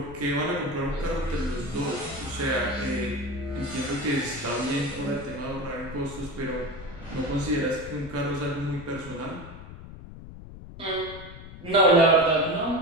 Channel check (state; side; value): noise; left; rumble, 14 dB below the sound